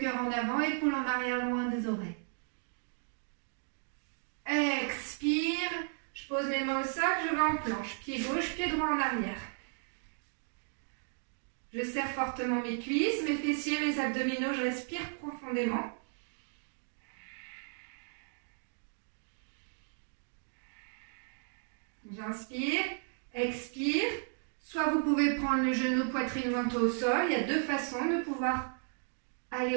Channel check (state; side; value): silent; left; 55 dB below the other